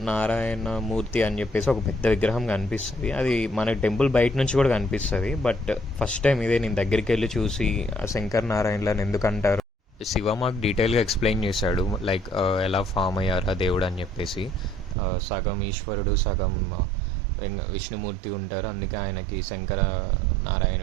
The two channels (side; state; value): left; drops out; at 15.0 s